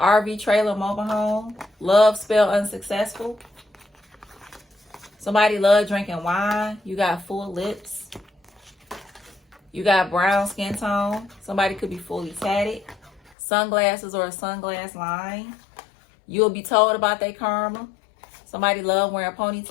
trailer mobile home, love spell unsuccessful. Somebody love drinking wine. You got full lips. You got brown skin tone. Somebody could be fully tatted. Sunglasses or a sunglass line. You'll be told about their karma. Somebody love wearing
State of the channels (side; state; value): right; drops out; at 13.3 s